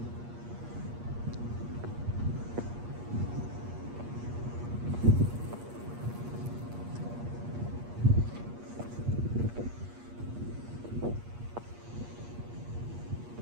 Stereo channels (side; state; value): left; late; 8.4 ms